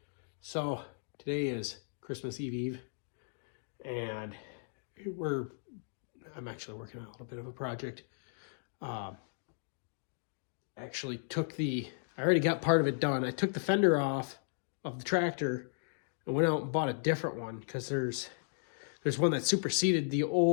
So today is Christmas Eve, and I'm actually working on a little bit of a project. I already got part of it done. I took the fender off of the tractor and went out and bought a different one because there's one that superseded the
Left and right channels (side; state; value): right; silent; digital silence